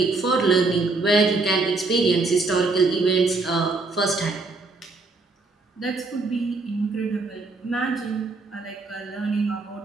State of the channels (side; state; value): left; quieter; 3.6 dB